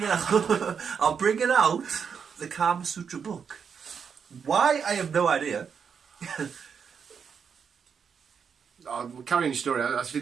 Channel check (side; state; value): left; quieter; 6.7 dB